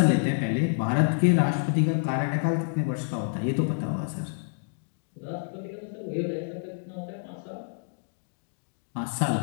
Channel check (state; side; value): silent; right; digital silence